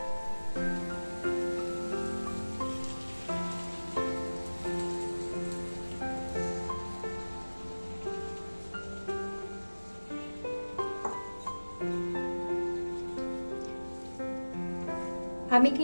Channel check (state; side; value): inverted; both; correlation -1.00